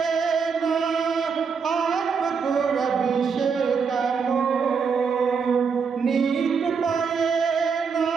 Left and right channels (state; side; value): quieter; left; 5.8 dB